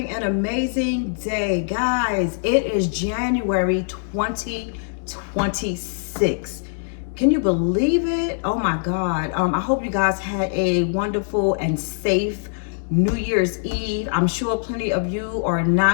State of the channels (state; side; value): silent; right; digital silence